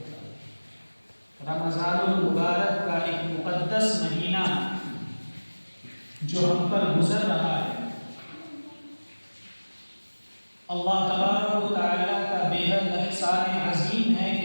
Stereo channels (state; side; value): inverted; both; correlation -1.00